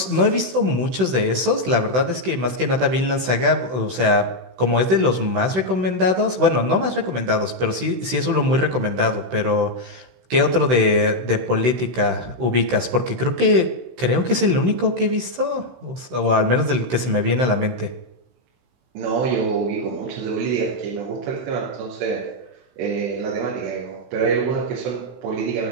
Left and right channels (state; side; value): late; left; 16 ms